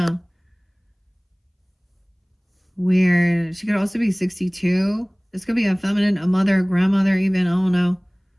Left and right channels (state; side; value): identical; both; correlation 1.00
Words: Weird. She could also be 62. This could be a feminine, a mother, a grandmother even. I don't know.